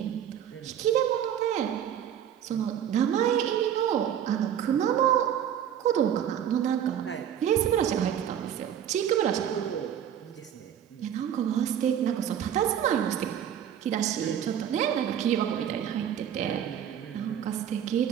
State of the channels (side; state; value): left; quieter; 9.6 dB